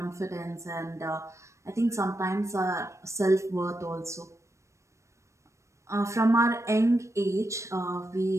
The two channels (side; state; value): left; late; 0.14 ms